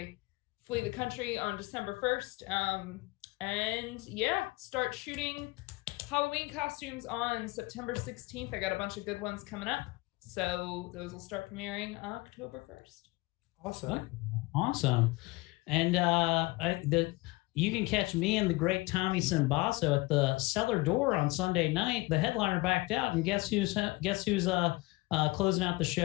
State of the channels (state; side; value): quieter; right; 22.8 dB